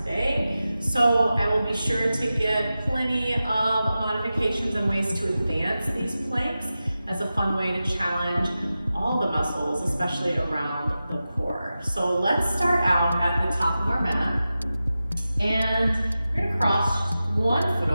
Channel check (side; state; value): both; inverted; correlation -0.93